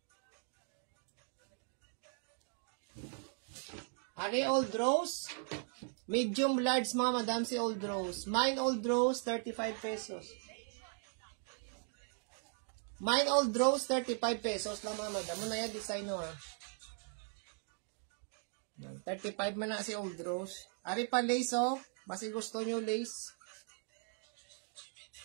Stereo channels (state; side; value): silent; left; 52 dB below the other